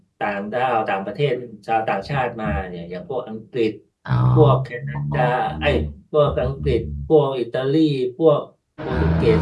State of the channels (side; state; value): both; identical; correlation 1.00